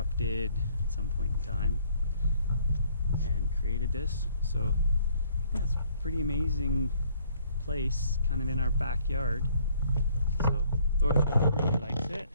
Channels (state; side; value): inverted; both; correlation -0.63